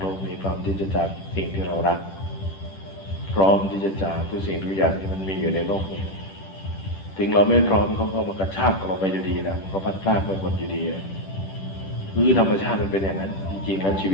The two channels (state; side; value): late; right; 10 ms